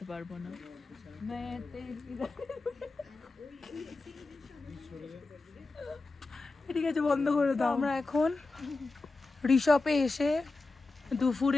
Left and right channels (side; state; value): right; quieter; 3.5 dB